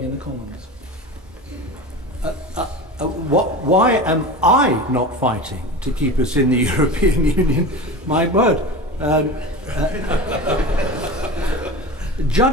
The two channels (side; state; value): both; normal; correlation 0.30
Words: in the Commons? Why am I not fighting to keep us in the European Union? My word.